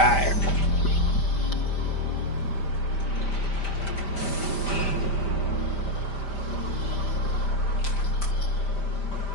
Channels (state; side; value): late; right; 5.0 ms